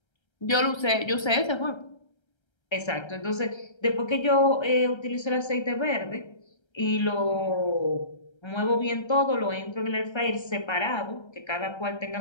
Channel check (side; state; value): right; late; 1.3 ms